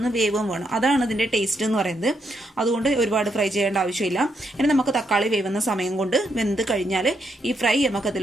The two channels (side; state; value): both; normal; correlation 0.78